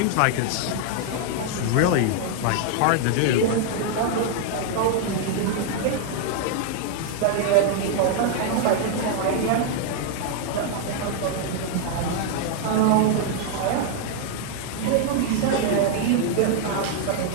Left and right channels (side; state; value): both; different; correlation 0.00